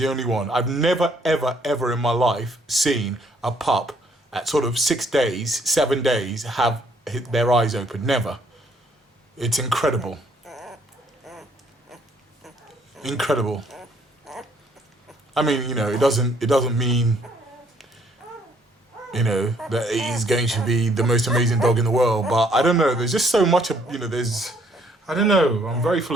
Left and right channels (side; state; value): both; normal; correlation 0.65